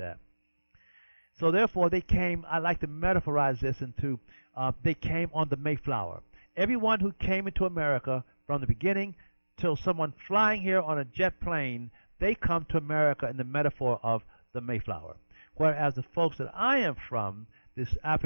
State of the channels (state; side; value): inverted; both; correlation -1.00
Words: So therefore they came, I like to metaphorize this into, they came on the Mayflower. Everyone who came into America from the beginning till someone flying here on a jet plane, they come to America in the metaphor of the Mayflower. Whereas the folks that I am from, this